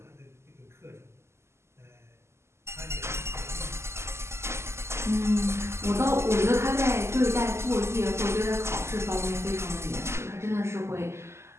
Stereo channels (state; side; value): late; left; 0.13 ms